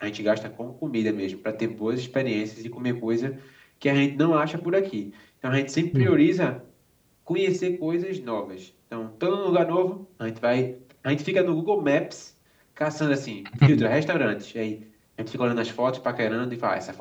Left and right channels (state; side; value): identical; both; correlation 1.00